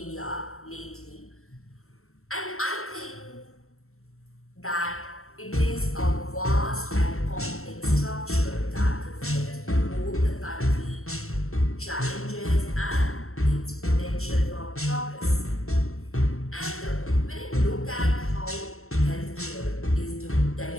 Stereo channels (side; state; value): right; late; 0.63 ms